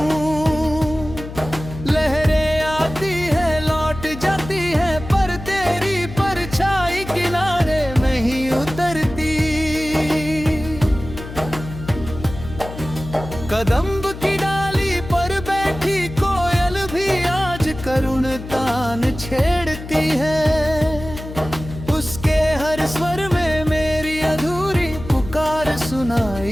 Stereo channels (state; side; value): noise; left; hum, 11 dB below the sound